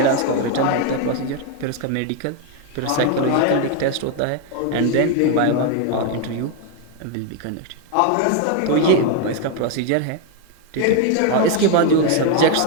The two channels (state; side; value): different; both; correlation 0.01